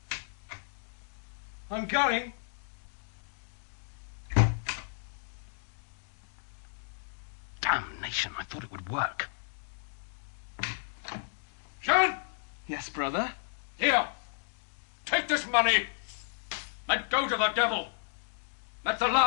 I'm going. Damnation, I thought it would work. Jehan! Yes, brother? Here! Take this money! Let go to the devil! That's the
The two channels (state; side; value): silent; right; digital silence